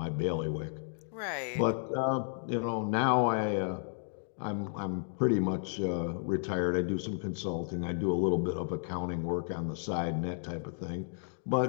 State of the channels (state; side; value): silent; right; digital silence